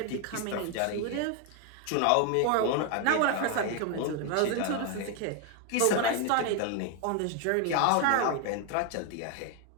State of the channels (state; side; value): different; both; correlation 0.01